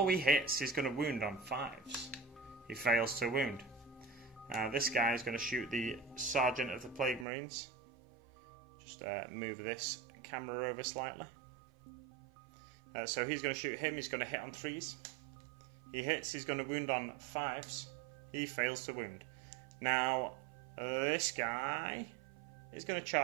he hits. He's going to wound on 5s. He fails to wound. This guy is going to shoot the Sergeant of the Plague Marines. Just move this camera over slightly. So he's going to shoot him. He's going to hit on 3s. He hits. He's going to wound on 5s. He fails to wound. Now this guy is going to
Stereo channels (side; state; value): left; drops out; at 7.2 s